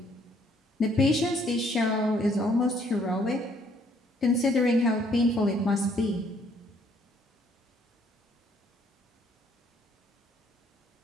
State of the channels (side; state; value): both; normal; correlation 0.65